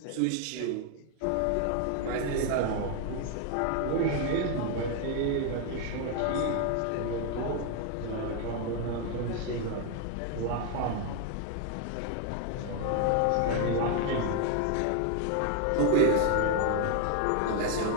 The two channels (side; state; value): both; different; correlation 0.00